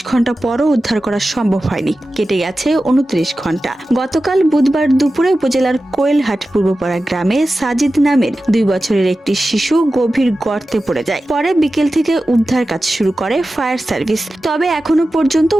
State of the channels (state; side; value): normal; both; correlation 0.94